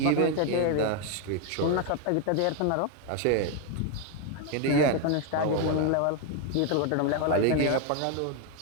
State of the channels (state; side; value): different; both; correlation 0.01